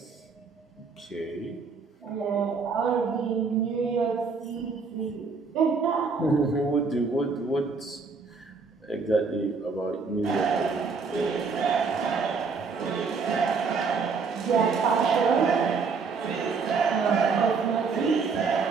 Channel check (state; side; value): quieter; left; 4.9 dB